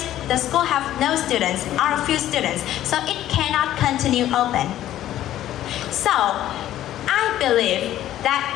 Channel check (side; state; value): right; quieter; 12.8 dB